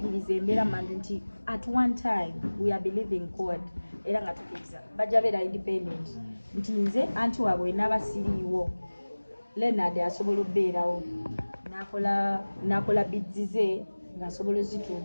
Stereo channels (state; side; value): inverted; both; correlation -1.00